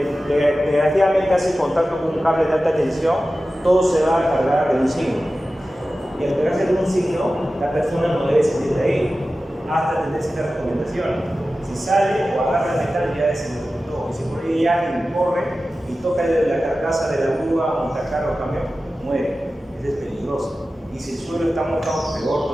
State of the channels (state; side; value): normal; both; correlation 0.94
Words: desgraciadamente hace contacto con un cable de alta tensión, todo se va a cargar de un signo. Y al cargarse de un signo, la persona no debe salir de ahí hasta tener ciertas recomendaciones. Si sale o agarra el metal, ya es el todo. Y si por ahí alguien corre y toca la carcasa de la grúa, montacarga o camión, muere. Eso es peligroso. Y si el suelo está mojado, peor